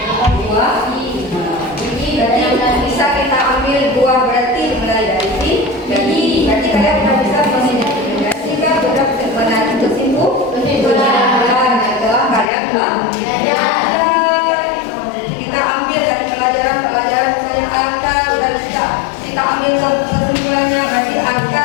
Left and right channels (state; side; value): drops out; right; at 12.5 s